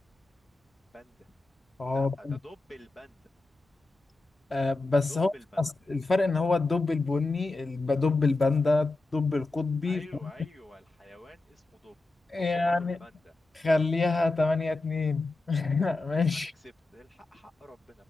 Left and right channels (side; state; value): right; quieter; 3.2 dB